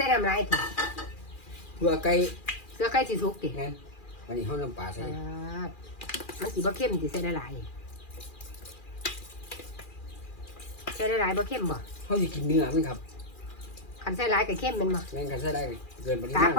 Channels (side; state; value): right; late; 2.4 ms